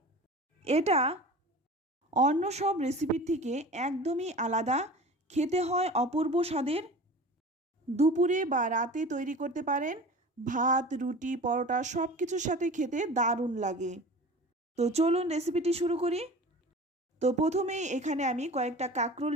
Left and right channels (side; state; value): both; normal; correlation 0.38